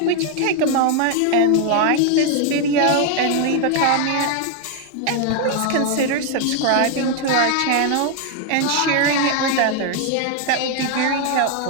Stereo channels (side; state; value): both; different; correlation 0.00